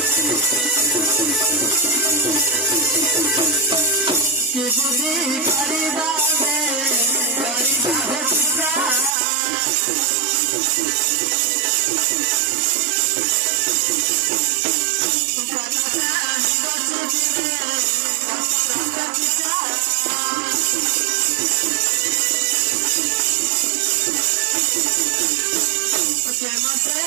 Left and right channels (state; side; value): drops out; left; at 9.2 s